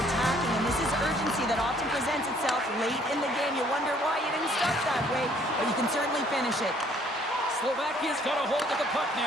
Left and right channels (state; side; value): normal; both; correlation 0.61